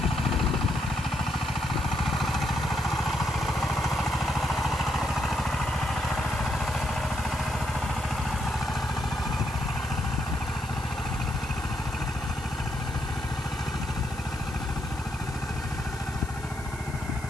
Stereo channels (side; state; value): left; noise; hiss, 18 dB below the sound